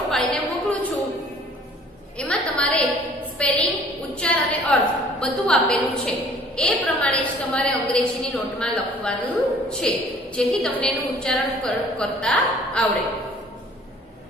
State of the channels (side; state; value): both; normal; correlation 0.54